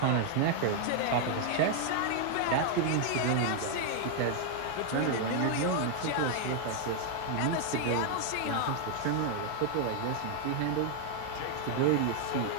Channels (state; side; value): different; both; correlation 0.00